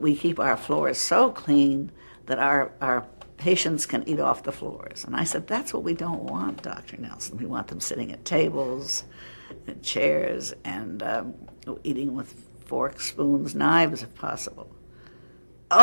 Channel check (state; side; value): inverted; both; correlation -1.00